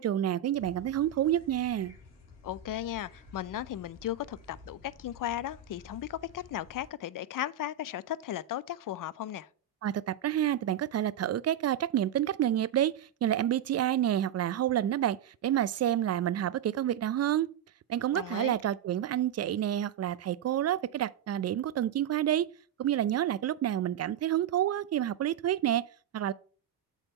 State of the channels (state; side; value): quieter; left; 8.0 dB